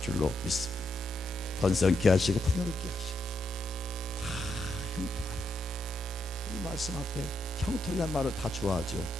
줄로 믿습니다. 번성케 하시고 풍요롭게 하시고 다 형통하라. 이 말씀 앞에 형통이란 말을 다 좋아하죠.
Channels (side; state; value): both; normal; correlation 0.80